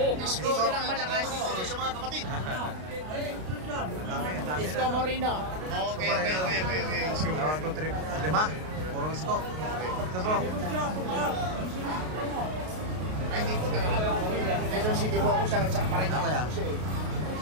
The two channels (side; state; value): left; late; 32 ms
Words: Isko lang malakas. Sa mga kapatid. Isko Moreno. Okay. Isko. 1, 2, 3, 5. Puro isko. Ito po. Ay, hindi po. Quezon City po ako sa parang Ako ya.